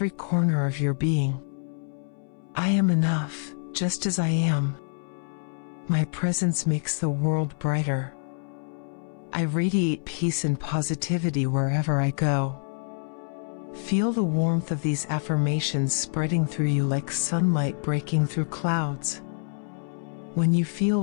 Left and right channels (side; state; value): right; silent; 60 dB below the other